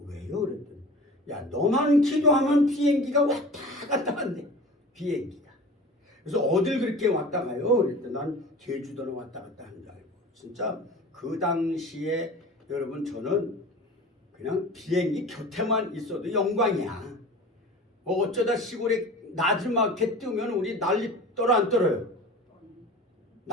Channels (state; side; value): normal; both; correlation 0.38